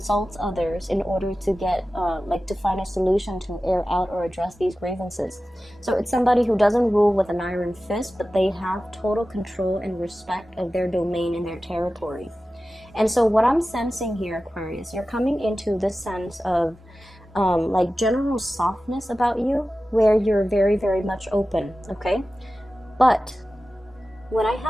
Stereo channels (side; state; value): both; normal; correlation 0.95